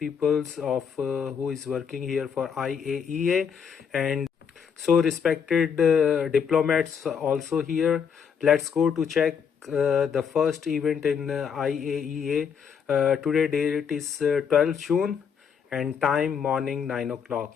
of who is working here for IAEA, and so respected diplomats also here. Let's go to check the first event in IAEA. Today date is 12 June and time morning 9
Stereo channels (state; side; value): quieter; right; 7.0 dB